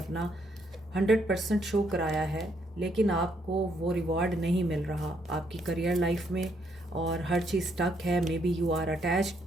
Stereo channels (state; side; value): normal; both; correlation 0.73